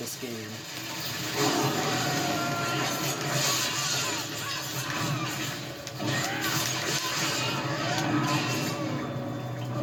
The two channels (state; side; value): identical; both; correlation 1.00